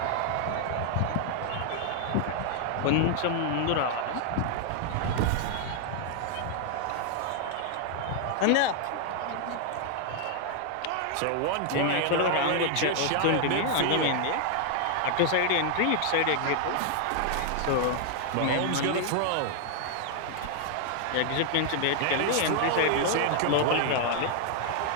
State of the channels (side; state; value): both; different; correlation 0.00